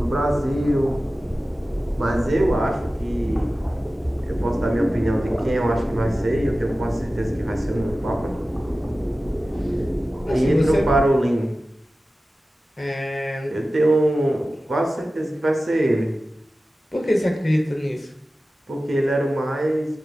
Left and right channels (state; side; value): normal; both; correlation 0.95